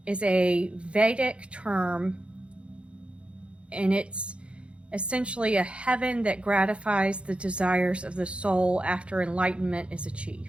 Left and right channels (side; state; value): left; late; 0.059 ms